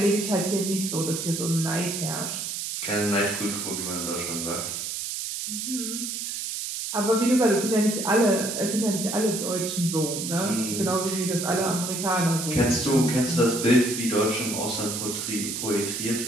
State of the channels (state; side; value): noise; right; hiss, 4 dB below the sound